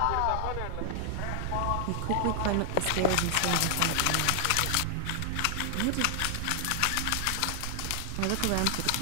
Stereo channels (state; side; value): different; both; correlation 0.00